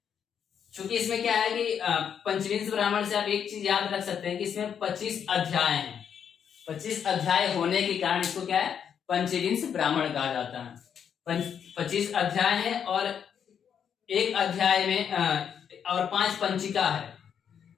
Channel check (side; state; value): right; quieter; 8.0 dB